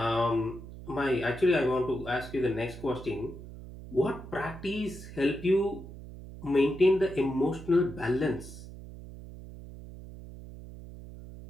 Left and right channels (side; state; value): right; noise; hum, 14 dB below the sound